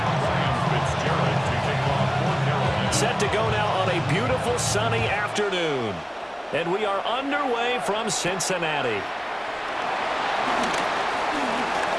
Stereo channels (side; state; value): both; identical; correlation 1.00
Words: Set to go now on a beautiful sunny afternoon. And we are underway from Cincinnati.